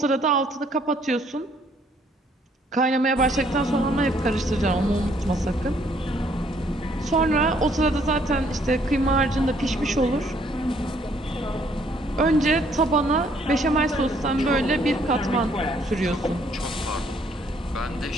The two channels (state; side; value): normal; both; correlation 0.65